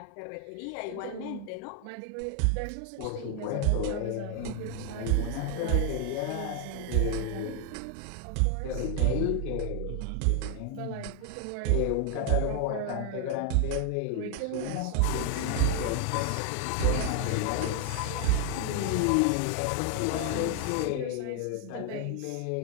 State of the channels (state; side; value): different; both; correlation 0.00